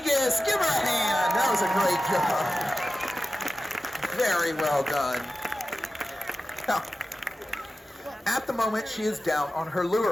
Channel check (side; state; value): both; normal; correlation 0.94